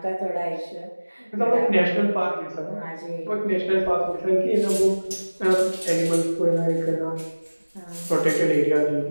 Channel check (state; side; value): inverted; both; correlation -1.00